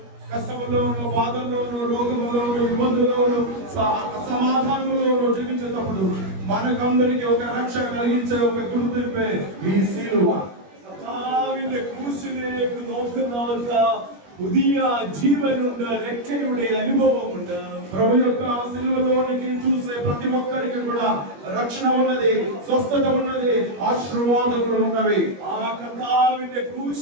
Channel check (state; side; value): late; left; 21 ms